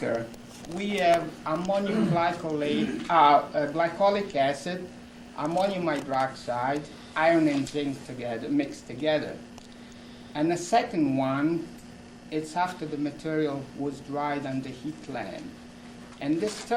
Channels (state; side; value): identical; both; correlation 1.00